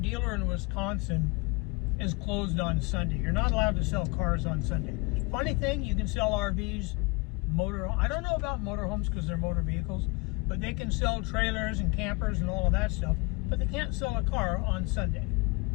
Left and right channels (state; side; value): quieter; right; 27.0 dB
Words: in Wisconsin is closed on Sunday. You're not allowed to sell cars on Sunday. Funny thing, you can sell RVs, I don't know about motorhomes because they're motor vehicles, but they can sell trailers and campers and all of that stuff, but they can't sell a car on Sunday.